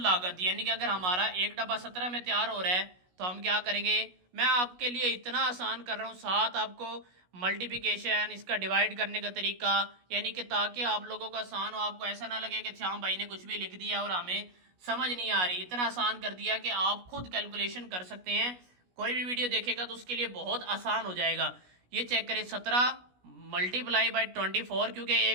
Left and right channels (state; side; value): late; left; 16 ms